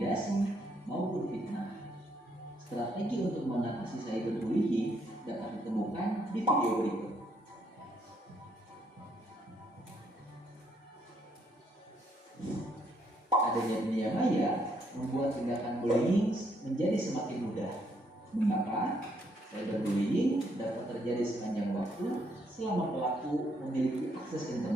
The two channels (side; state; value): both; normal; correlation 0.72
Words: maupun fitnah. Strategi untuk mengatasi cyberbullying dapat ditemukan di video berikut. Adanya dunia maya membuat tindakan bullying menjadi semakin mudah. Mengapa? Cyberbullying dapat terjadi sepanjang waktu selama pelaku memiliki akses